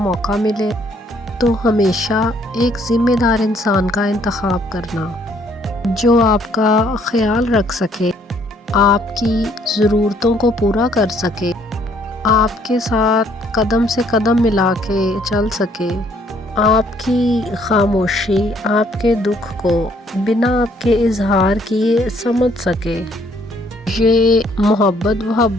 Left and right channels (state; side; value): normal; both; correlation 0.65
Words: ملے تو ہمیشہ ایک ذمہ دار انسان کا انتخاب کرنا جو آپ کا خیال رکھ سکے، آپ کی ضرورتوں کو پورا کر سکے، آپ کے ساتھ قدم سے قدم ملا کے چل سکے، آپ کی خاموشی آپ کے دکھ کو بنا آپ کے اظہار کیے سمجھ سکے۔ یہ